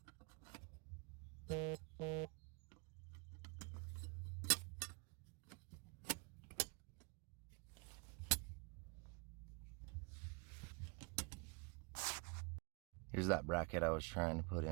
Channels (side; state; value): left; quieter; 29.5 dB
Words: Here's that bracket I was trying to put